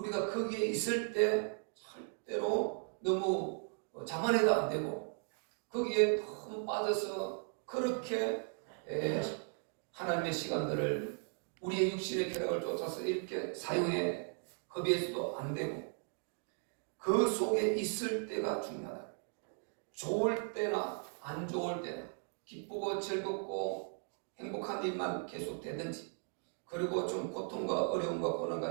거기에 있을 때 절대로 너무 자만해도 안 되고 거기에 너무 빠져서 그렇게 하나님의 시간들을 우리의 육신의 쾌락을 쫓아서 이렇게 사용해 겁해서도 안 되고 그 속에 있을 때가 중요하다. 좋을 때나 안 좋을 때나 기쁘고 즐겁고 행복한 일만 계속 되든지 그리고 좀 고통과 어려움과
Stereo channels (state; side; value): silent; left; 53 dB below the other